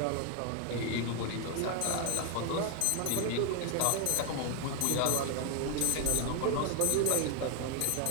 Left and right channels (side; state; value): both; different; correlation 0.00